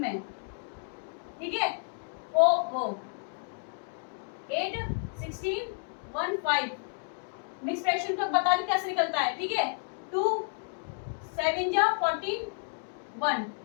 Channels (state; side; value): silent; right; 57 dB below the other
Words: ठीक है, वो 8 16 1 5 मिक्स फ्रैक्शन का बता दें कैसे निकलता है। ठीक है, 2 7 जा 14 1।